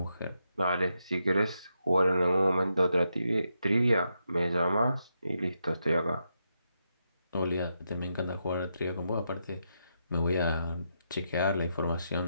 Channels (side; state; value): both; inverted; correlation -0.83